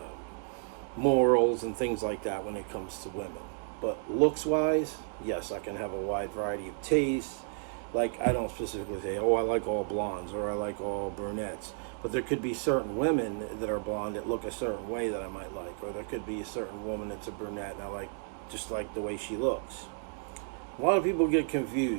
morals and things like that when it comes to women. But looks-wise, yes, I can have a wide variety of tastes. Like, I don't specifically say, oh, I like all blondes or I like all brunettes. But there could be certain women that are blonde that look a certain way that I might like. Or there could be a certain woman that's a brunette and I like just like the way she looks. A lot of people get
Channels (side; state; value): left; silent; 56 dB below the other